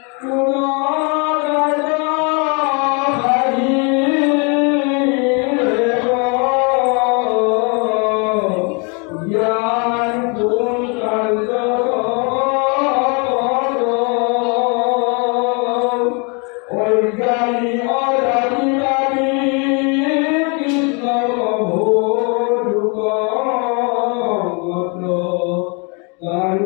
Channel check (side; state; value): right; quieter; 33.8 dB